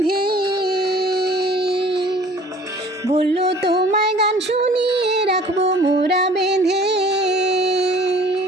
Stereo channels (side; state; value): both; normal; correlation 0.50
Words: বলল তোমায় গান শুনিয়ে রাখবো মোরা বেঁধে।